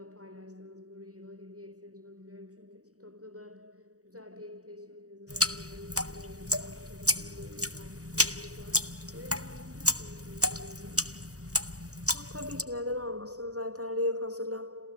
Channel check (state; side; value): late; left; 0.66 ms